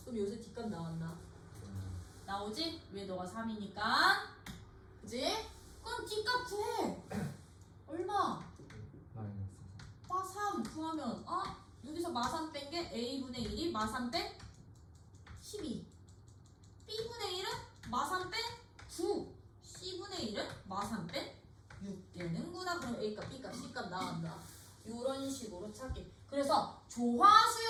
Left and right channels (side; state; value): both; identical; correlation 1.00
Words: 그럼 여기서 D값 나왔나? 나오지? 왜 너가 3이니까? 그지? 그럼 D값 구해. 얼마? 마3 구하면 여기서 마3 뺀 게 A분의 1이 마3 뺀 12. B분의 1은 마3 뺀 9. C분의 1은 마3 뺀 6 되는구나. 그럼 A값, B값, C값 나온다. 이런 식으로 찾기. 그래서